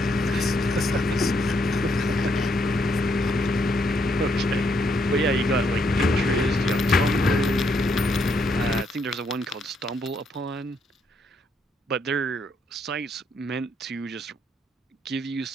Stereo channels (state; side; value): normal; both; correlation 0.74